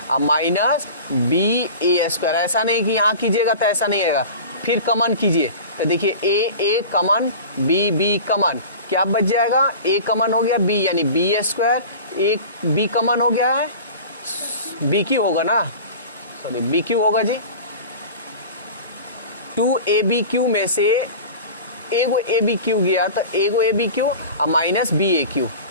-BA²। ऐसा नहीं कि यहाँ कीजिएगा तो ऐसा नहीं आएगा, फिर कमन कीजिए तो देखिए A कमन, B कमन, क्या बच जाएगा, A कमन हो गया, B यानी B², एक B कमन हो गया है, BQ होगा ना, सॉरी BQ होगा जी। 2ABQ में से एगो ABQ गया तो एगो ABQ और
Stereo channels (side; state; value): both; inverted; correlation -0.37